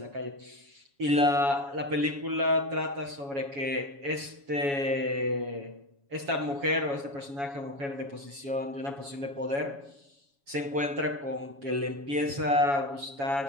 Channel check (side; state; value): left; late; 7.2 ms